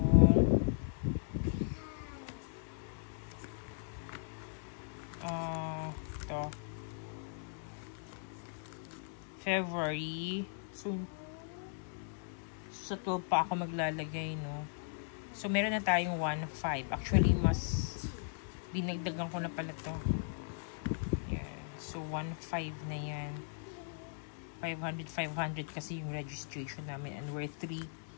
ito. February. So, sa 12 pa ako maglalagay, no? So, meron na tayong 1.5. Actually, mas dinagdagan ko na pala to. Yeah. So, 1.5 na yan. 500 kasi yung registration namin. And we're 3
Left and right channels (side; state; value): right; silent; digital silence